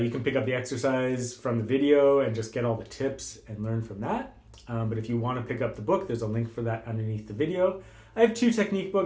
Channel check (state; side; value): identical; both; correlation 1.00